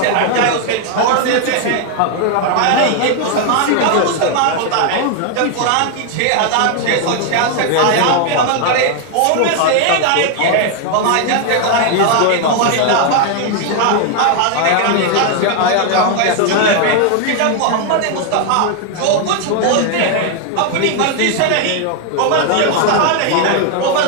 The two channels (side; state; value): both; different; correlation 0.01